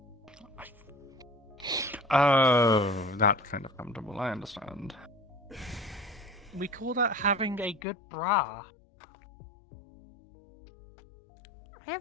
Oh, that kind of comfortable. I understand. We call that having a good bra. I have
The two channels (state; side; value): drops out; right; at 7.8 s